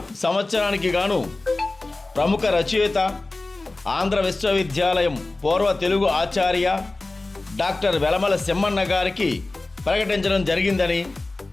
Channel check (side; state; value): right; quieter; 3.1 dB